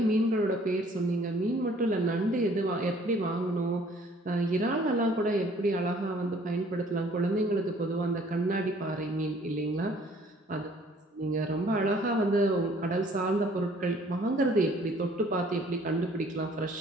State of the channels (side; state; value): both; normal; correlation 0.57